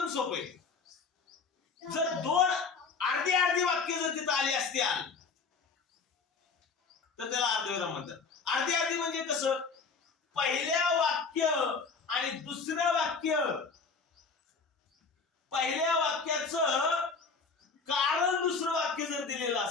सोपं आहे. जर दोन अर्धी अर्धी वाक्य जर तिथं आली असतील तर त्याला अर्धविराम म्हणतात. अर्धी अर्धी म्हणजे कसं? पहिल्या वाक्य आणि दुसऱ्या वाक्य, पहिल्या वाक्याचं कारण दुसरं वाक्य जर दिलेलं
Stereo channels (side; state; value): right; quieter; 4.9 dB